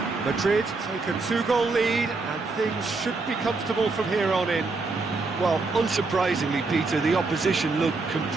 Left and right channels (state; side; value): quieter; left; 3.8 dB